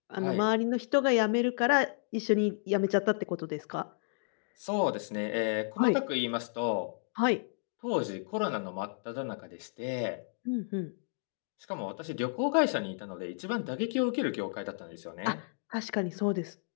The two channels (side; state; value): right; silent; digital silence